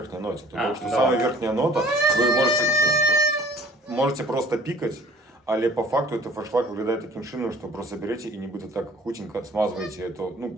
ноті? Тому що давай. сама верхня нота, ви можете просто пікати, але по факту это форшлаг виглядає таким чином, що просто берете і нібито так хутенько смазуєте это, ну,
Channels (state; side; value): normal; both; correlation 0.52